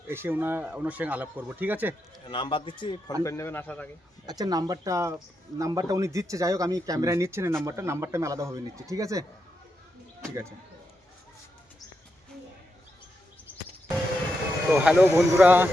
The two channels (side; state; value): both; normal; correlation 0.85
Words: এসে ওনার সঙ্গে আলাপ করবো, ঠিক আছে? নাম্বার দিচ্ছি, ফোন করে নেবেন আসার আগে। আচ্ছা, নাম্বারটা উনি দিচ্ছে। যাই হোক, আমি ক্যামেরায় নিচ্ছি না নাম্বারটা আমি আলাদাভাবে নিচ্ছি, ঠিক আছে? ঠিক আছে। তো হ্যালো বন্ধুরা,